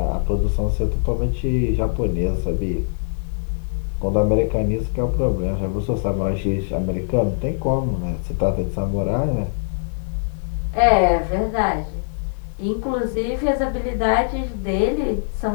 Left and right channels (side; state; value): right; silent; digital silence